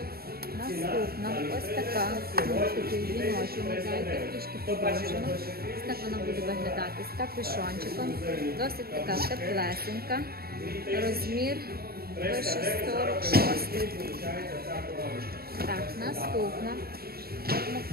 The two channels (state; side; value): late; left; 0.45 ms